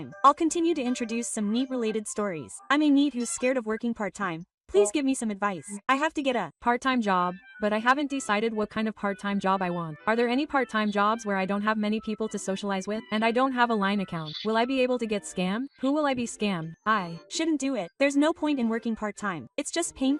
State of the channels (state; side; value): identical; both; correlation 1.00